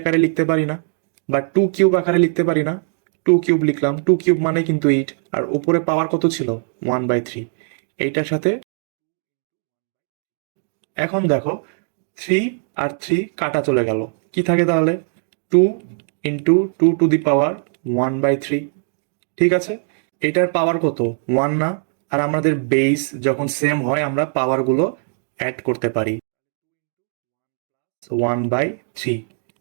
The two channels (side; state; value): left; silent; 58 dB below the other